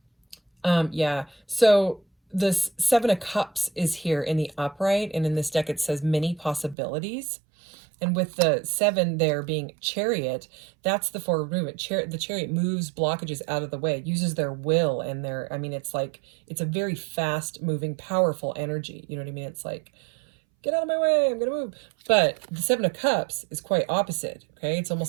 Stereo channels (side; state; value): left; drops out; at 6.8 s